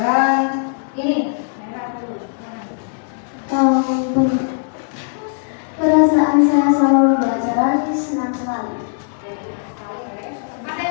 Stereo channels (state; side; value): silent; right; digital silence